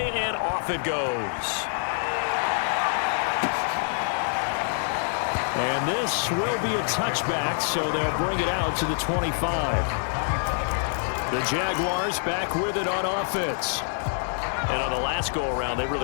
and off it goes. And this will be a touchback, so they'll bring it out to the 25. The Jaguars back with it on offense. And on the last go-around, they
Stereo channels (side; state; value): right; silent; digital silence